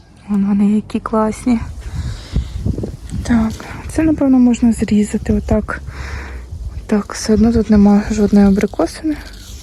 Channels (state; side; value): identical; both; correlation 1.00